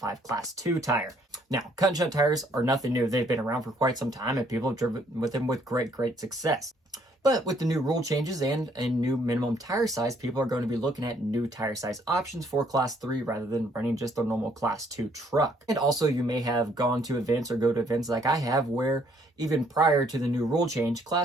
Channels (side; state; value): both; normal; correlation 0.66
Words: Class 2 tire. Now, cut and shunt tires are nothing new. They've been around for quite some time, and people have driven with them with great success. But with the new rule changes and a new minimum tire size, people are going to be looking at new tire size options for Class 3 rather than running just a normal Class 2 truck. And also, you may have gone to events or go to events like I have where even prior to the new rule change,